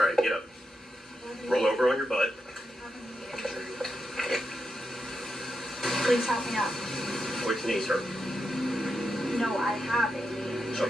right, get up. Roll over on your butt. Please help me up. Which knees hurt? No, I have it.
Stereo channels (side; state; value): both; normal; correlation 0.86